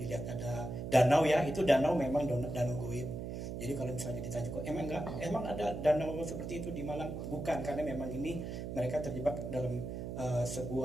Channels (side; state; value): right; noise; hum, 6 dB below the sound